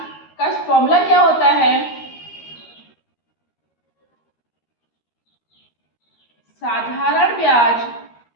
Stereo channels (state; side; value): late; right; 13 ms